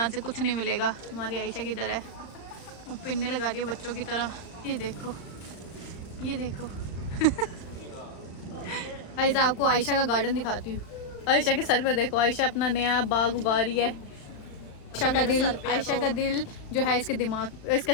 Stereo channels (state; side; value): late; right; 35 ms